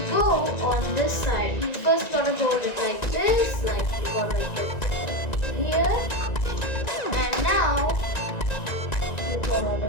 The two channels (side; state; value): right; late; 1.9 ms